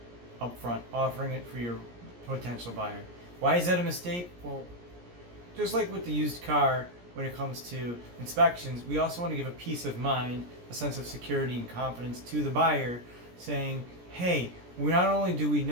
up front, offering it for your potential buyer. Why is that a mistake? Well, just like with the used car, when it comes to inspections, we also want to give a peace of mind, a sense of security and confidence to the buyer, saying, hey, not only do we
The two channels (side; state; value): left; late; 17 ms